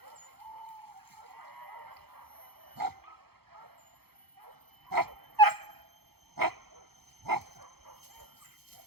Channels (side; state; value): left; late; 0.96 ms